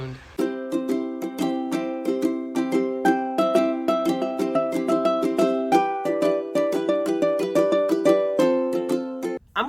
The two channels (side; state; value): both; identical; correlation 1.00